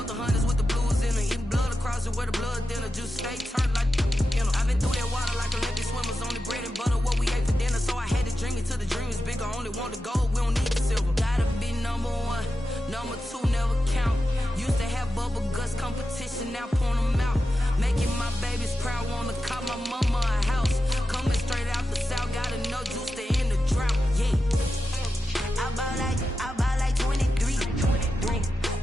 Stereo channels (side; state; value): both; normal; correlation 0.90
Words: the hunters with the blues in them. Eating blood across it where the blood dinner. Just stay turned like you know. I've been through that water like Olympic swimmers. Only bread and butter what we ate for dinner. So I had to dream it till the dream is bigger. Only want the gold, we don't need the silver. Gotta be number 1, number 2 never count. Used to have bubble guts competition, now point them out. Making my babies proud, wanna call my mama a house. Coming straight out the south, gotta know juice to end the drought. Yeah, I buy like 23.